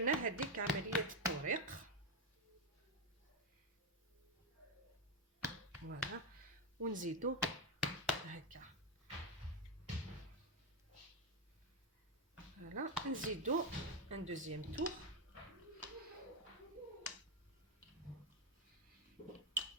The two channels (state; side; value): normal; both; correlation 0.07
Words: هذيك عمليه التوريق. فوالا ونزيدو هكا، فوالا نزيدو ان دوزيام تور.